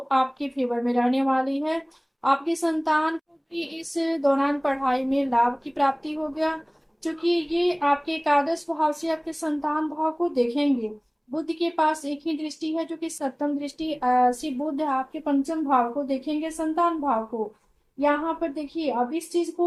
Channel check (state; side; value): identical; both; correlation 1.00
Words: आपके फेवर में रहने वाली है। आपकी संतान को भी इस दौरान पढ़ाई में लाभ की प्राप्ति हो गया, क्योंकि ये आपके एकादश भाव से आपके संतान भाव को देखेंगे। बुध के पास एक ही दृष्टि है जो कि सप्तम दृष्टि से बुध आपके पंचम भाव को देखेंगे, संतान भाव को। यहाँ पर देखिए, अब इस चीज